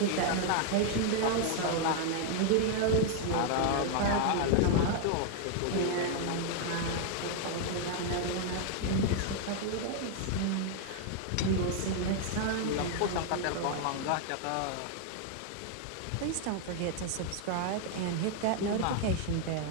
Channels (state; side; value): different; both; correlation 0.00